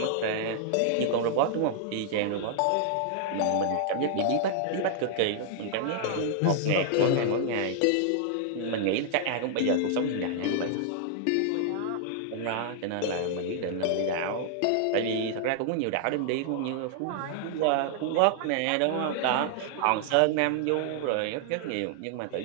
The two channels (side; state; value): both; different; correlation -0.01